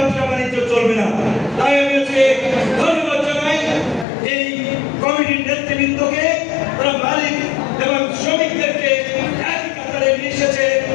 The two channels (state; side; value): drops out; right; at 4.0 s